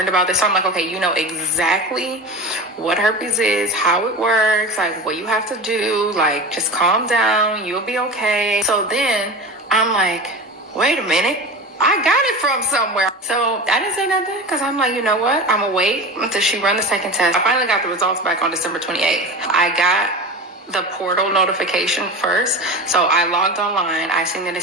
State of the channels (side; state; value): both; normal; correlation 0.30